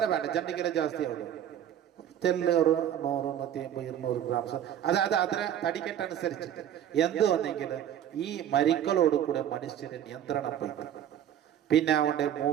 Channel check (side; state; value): left; quieter; 10.4 dB